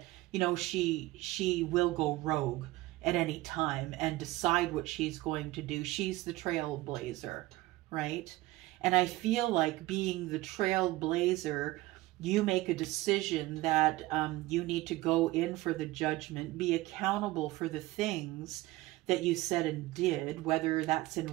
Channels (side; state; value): left; quieter; 18.4 dB